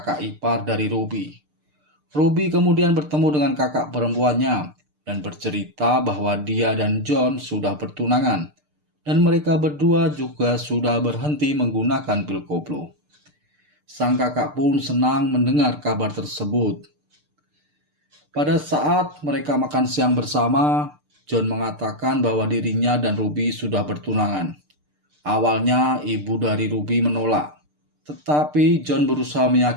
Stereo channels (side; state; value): left; late; 6.7 ms